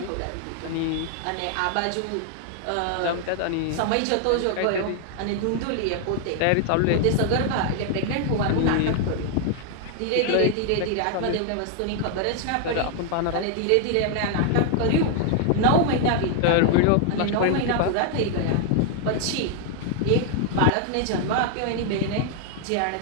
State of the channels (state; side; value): different; both; correlation 0.00